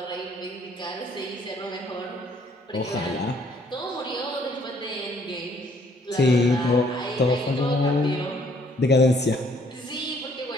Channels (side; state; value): both; normal; correlation 0.64